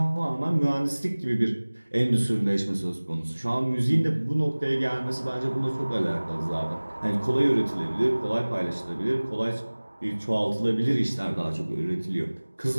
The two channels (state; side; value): inverted; both; correlation -1.00